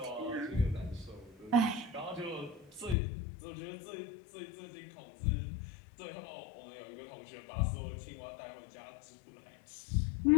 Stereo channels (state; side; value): drops out; right; at 3.0 s